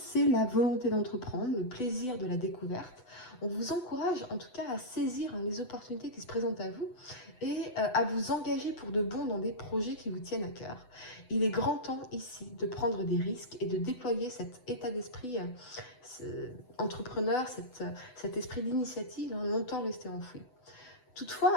la volonté d'entreprendre, le plaisir de la découverte. On vous encourage en tout cas à saisir les opportunités qui se présentent à vous et à vous engager pour de bon dans des projets qui vous tiennent à cœur. Il est grand temps ici de prendre des risques et de déployer cet état d'esprit entrepreneur, cet esprit d'initiative longtemps resté enfoui. Toutefois,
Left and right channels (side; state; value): right; late; 8.0 ms